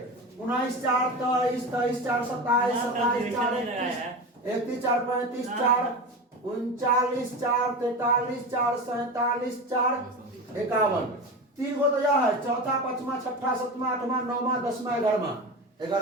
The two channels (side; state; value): both; normal; correlation 0.26